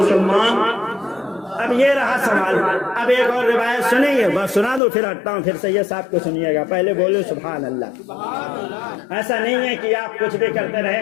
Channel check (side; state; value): right; drops out; at 4.8 s